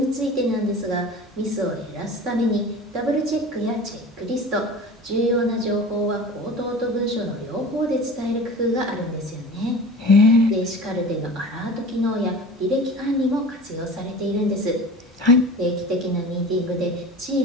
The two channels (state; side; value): normal; both; correlation 0.37